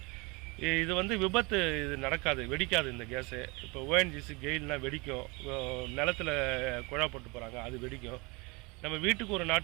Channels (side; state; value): left; quieter; 27.1 dB